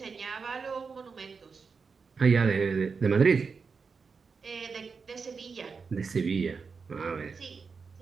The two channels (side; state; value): left; quieter; 5.2 dB